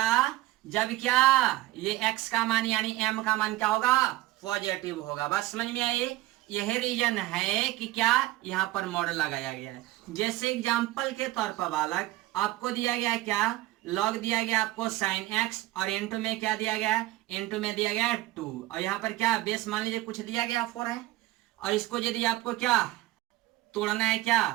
जब क्या ये x का मान यानी m का मान क्या होगा पॉजिटिव होगा। बस समझ में आई, यही रीजन है कि क्या यहाँ पर मॉड लगाया गया है। जैसे एग्जाम्पल के तौर पर बालक आपको दिया गया क्या, log दिया गया आपको sin x और इनटू में क्या दिया गया, इनटू में दिया गया 2, और यहाँ पर क्या बेस मान लीजिए कुछ दिया गया 4 है, और इसको यदि आपको क्या तोड़ना है क्या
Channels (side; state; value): left; quieter; 17.3 dB